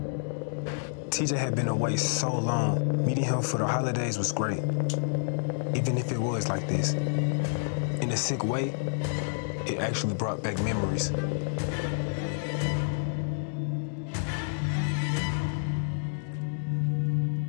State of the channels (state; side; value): silent; right; digital silence